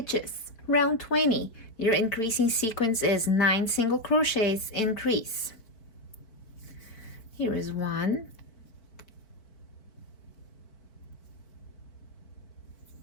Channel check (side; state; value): right; late; 4.5 ms